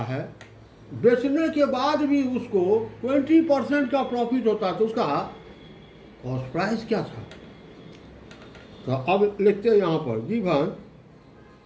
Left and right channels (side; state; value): both; identical; correlation 1.00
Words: है, बेचने के बाद भी उसको 20% का प्रॉफिट होता है। तो उसका कॉस्ट प्राइस क्या था? तो अब लिखते हैं यहाँ पर